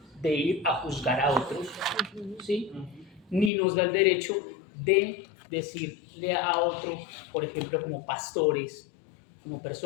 de ir a juzgar a otros, ¿sí? Ni nos da el derecho de decirle a otros, por ejemplo, como pastores, como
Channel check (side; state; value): right; drops out; at 3.5 s